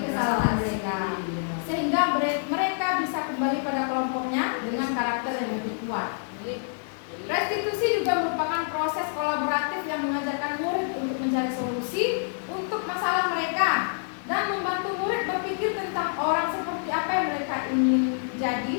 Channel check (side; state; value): right; silent; 60 dB below the other